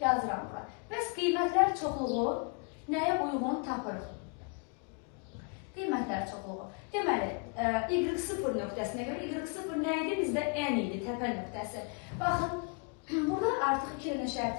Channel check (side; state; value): right; quieter; 35.3 dB